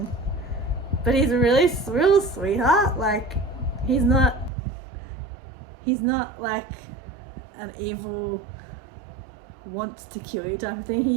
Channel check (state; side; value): drops out; left; at 4.5 s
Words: But he's a real sweetheart. Like he's not like an evil, wants to kill you type of thing.